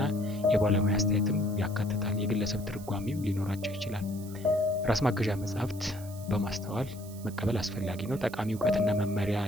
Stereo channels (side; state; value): right; noise; hiss, 18 dB below the sound